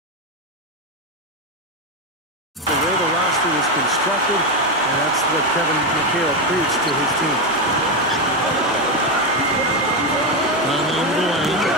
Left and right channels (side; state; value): both; normal; correlation 0.10